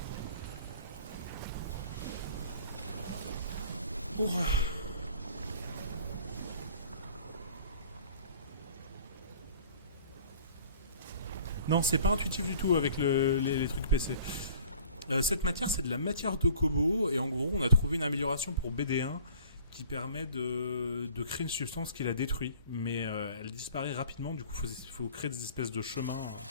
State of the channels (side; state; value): both; inverted; correlation -0.49